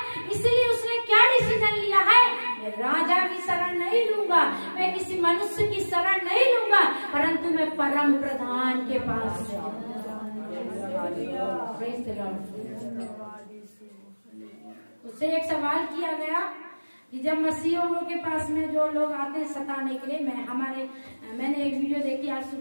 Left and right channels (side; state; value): both; inverted; correlation -1.00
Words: इसलिए उसने क्या डिसीजन लिया है? मैं राजा की शरण नहीं लूंगा, मैं किसी मनुष्य की शरण नहीं लूंगा, परंतु मैं परम प्रधान के पास उससे एक सवाल किया गया कि जब मसीहों के पास में जो लोग आते हैं सताने के लिए, मैंने एक वीडियो देखी आज